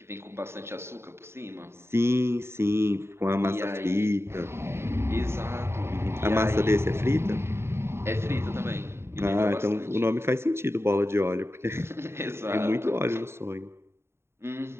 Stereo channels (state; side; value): late; left; 0.12 ms